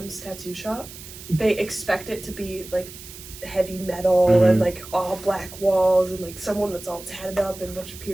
tattoo shop, they expect it to be like heavy metal and like all black walls and like someone that's all tatted up and a bunch of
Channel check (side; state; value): right; noise; hiss, 15 dB below the sound